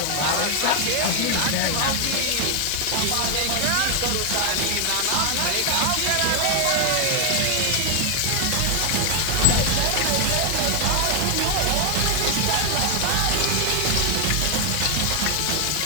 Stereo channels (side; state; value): both; different; correlation 0.00